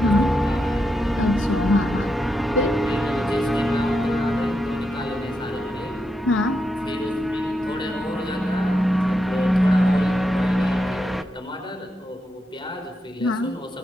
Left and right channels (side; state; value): both; normal; correlation 0.85